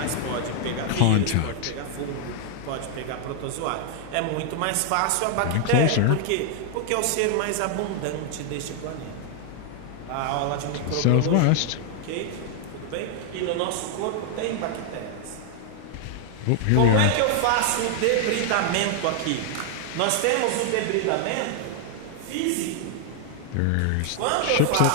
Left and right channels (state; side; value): different; both; correlation 0.00